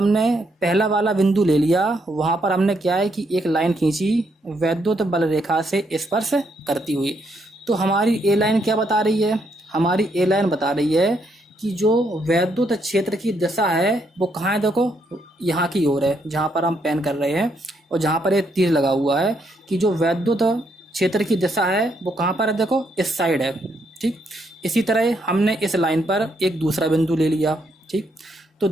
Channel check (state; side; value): normal; both; correlation 0.75